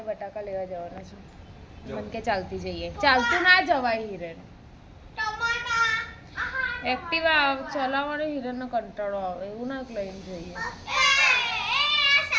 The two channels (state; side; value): identical; both; correlation 1.00